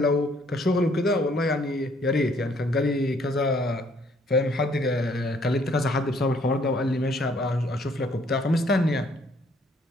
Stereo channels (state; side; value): normal; both; correlation 0.64